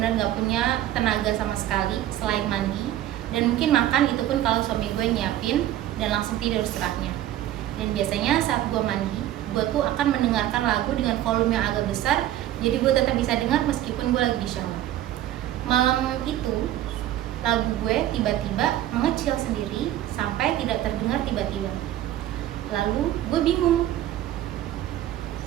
nggak punya tenaga sama sekali selain mandi, dan mungkin makan itu pun kalau suami gue nyiapin dan langsung tidur setelahnya. Dan biasanya saat gue mandi, gue tuh akan mendengarkan lagu dengan volume yang agak besar, jadi gue tetap bisa dengar meskipun gue lagi di shower. Malam itu, lagu gue tiba-tiba mengecil sendiri sampai tidak terdengar tiba-tiba. Lalu gue bingung.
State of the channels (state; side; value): quieter; left; 13.0 dB